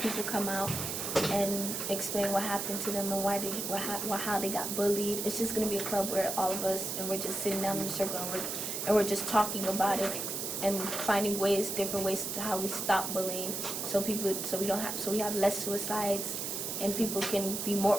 people come out and explain what happened to them and how they got bullied. It's just going to be a club where all of us, and we're just sitting down in a circle, and we're just talking about it and finding different ways to how we stop bullying, so we have less suicides, and people can be more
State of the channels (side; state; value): right; noise; hiss, 3 dB below the sound